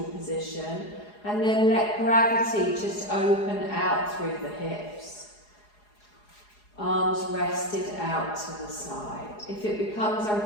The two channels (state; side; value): late; right; 4.8 ms